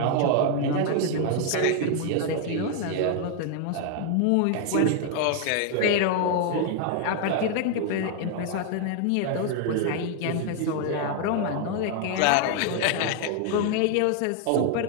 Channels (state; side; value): different; both; correlation 0.00